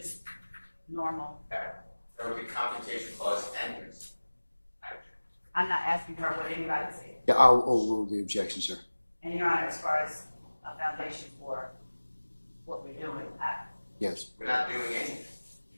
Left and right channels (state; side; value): inverted; both; correlation -1.00